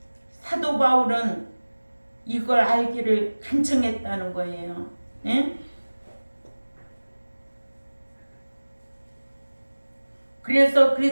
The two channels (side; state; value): both; inverted; correlation -1.00